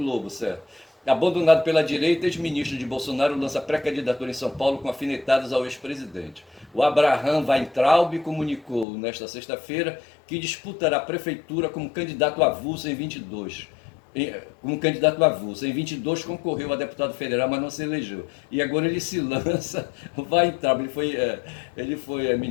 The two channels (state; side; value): drops out; right; at 8.8 s